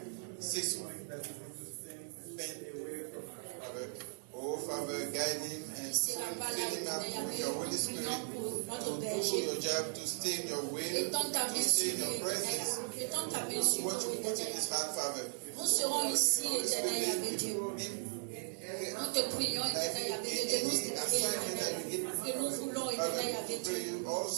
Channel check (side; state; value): left; silent; 53 dB below the other